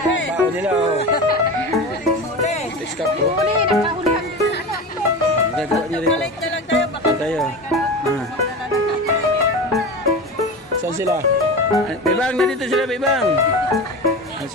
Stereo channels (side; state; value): both; normal; correlation 0.27